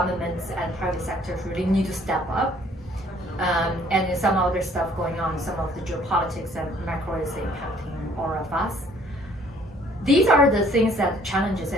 and private sectors really need to step up. And there's some other stuff going on, some of the geopolitics and macro is impacting all of us. These are the things that challenges,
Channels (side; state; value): both; normal; correlation 0.59